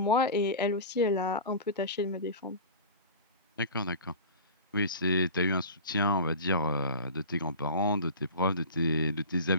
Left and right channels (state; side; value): inverted; both; correlation -0.34